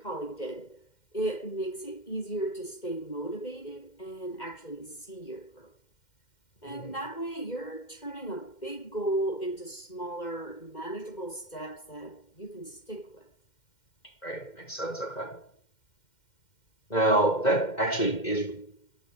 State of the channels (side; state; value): right; late; 2.1 ms